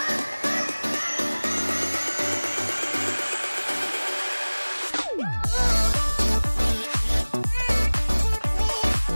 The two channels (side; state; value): both; inverted; correlation -1.00